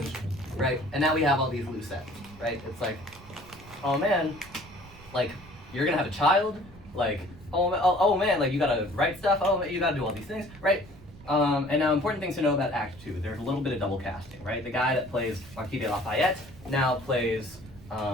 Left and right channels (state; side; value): noise; right; rumble, 20 dB below the sound